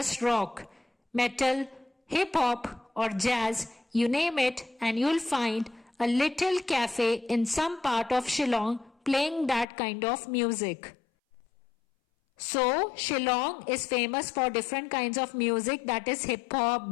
rock, metal, hip-hop or jazz, you name it and you'll find a little cafe in some part of Shillong playing that kind of music. So, Shillong is famous for different kinds of music, that is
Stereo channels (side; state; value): right; drops out; at 9.7 s